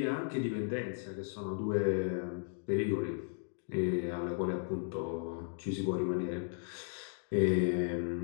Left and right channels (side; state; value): right; silent; digital silence